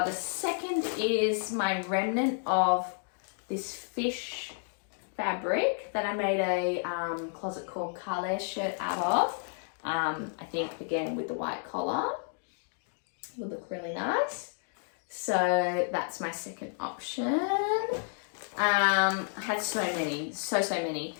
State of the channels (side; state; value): right; silent; 57 dB below the other